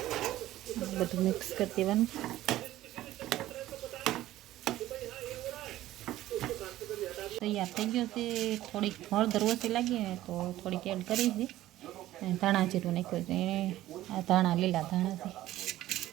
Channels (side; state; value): left; quieter; 14.7 dB